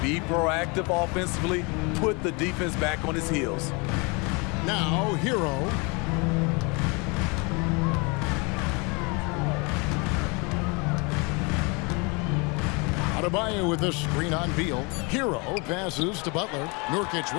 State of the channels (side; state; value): right; quieter; 29.7 dB